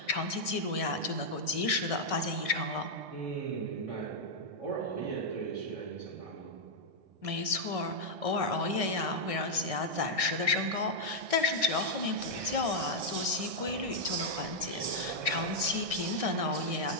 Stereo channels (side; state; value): left; late; 1.6 ms